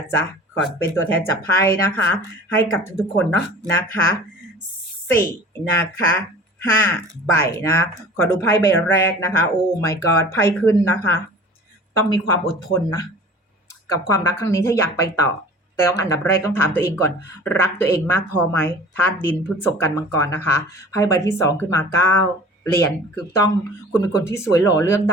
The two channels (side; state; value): both; normal; correlation 0.43